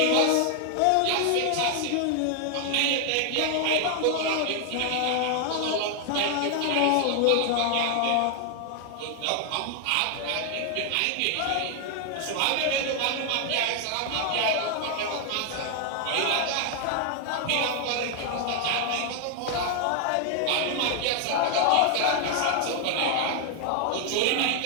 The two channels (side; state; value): both; different; correlation 0.00